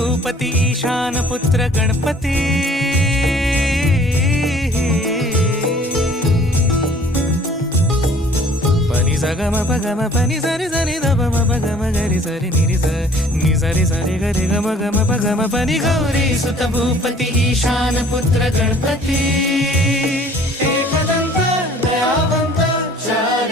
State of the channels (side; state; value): both; normal; correlation 0.53